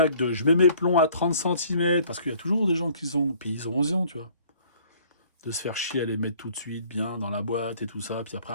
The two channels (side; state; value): both; inverted; correlation -0.56